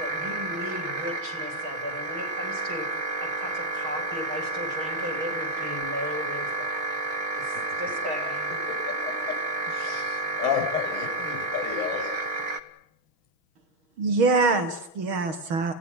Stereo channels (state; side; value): late; left; 6.3 ms